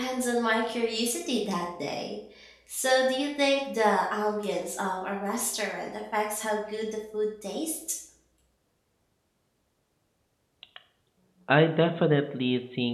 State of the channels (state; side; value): identical; both; correlation 1.00